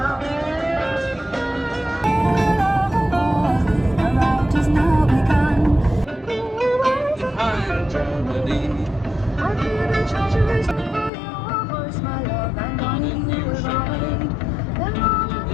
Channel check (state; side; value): drops out; right; at 11.1 s